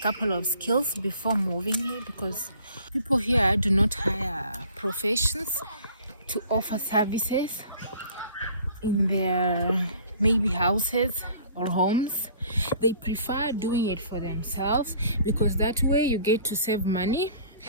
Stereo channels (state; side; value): inverted; both; correlation -0.52